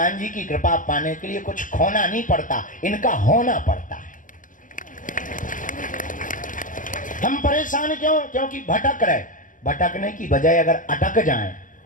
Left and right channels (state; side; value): late; right; 0.38 ms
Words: जी की कृपा पाने के लिए कुछ खोना नहीं पड़ता, इनका होना पड़ता है। हम परेशान क्यों? क्योंकि भटक रहे, भटकने की बजाय अगर अटक जाएं